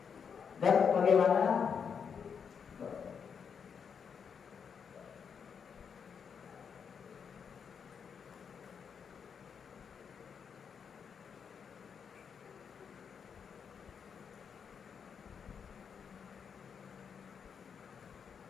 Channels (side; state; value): right; quieter; 6.7 dB